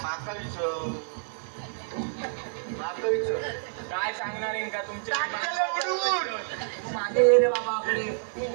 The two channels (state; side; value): silent; left; digital silence